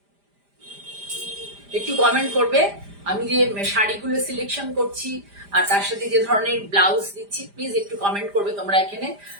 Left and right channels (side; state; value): left; late; 5.0 ms